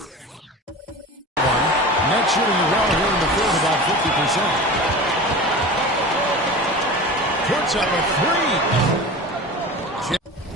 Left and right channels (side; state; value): both; normal; correlation 0.33